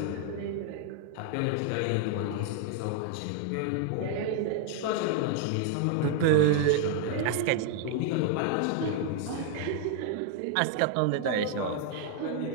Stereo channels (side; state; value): both; different; correlation 0.00